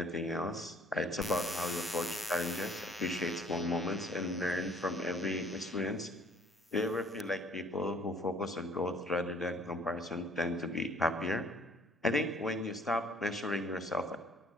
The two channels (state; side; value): normal; both; correlation 0.57